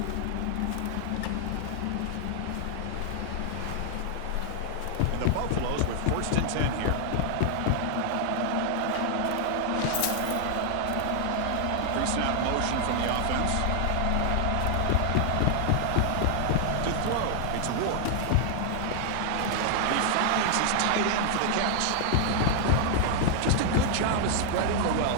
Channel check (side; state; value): both; different; correlation 0.00